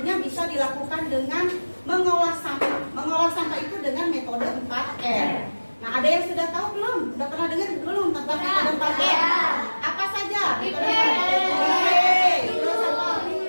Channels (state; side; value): inverted; both; correlation -1.00